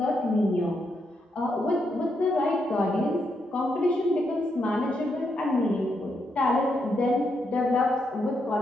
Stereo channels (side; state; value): both; normal; correlation 0.80